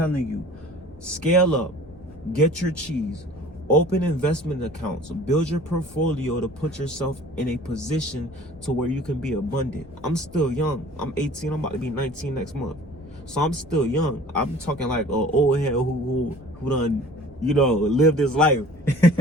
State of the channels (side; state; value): both; normal; correlation 0.46